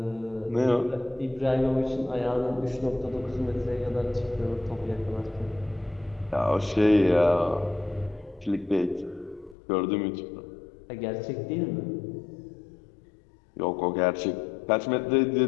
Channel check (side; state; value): right; drops out; at 9.6 s